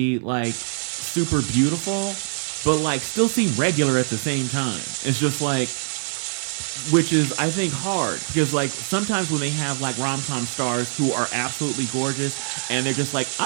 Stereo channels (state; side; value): silent; left; 57 dB below the other